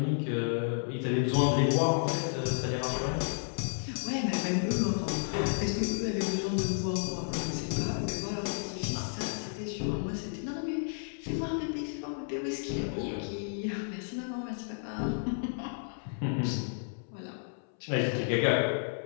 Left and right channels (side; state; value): right; silent; 56 dB below the other